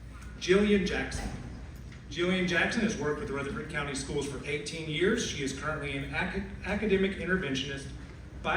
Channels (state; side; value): identical; both; correlation 1.00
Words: Jillian Jackson. Jillian Jackson has worked with Rutherford County Schools for 18 years. She is currently an academic interventionist,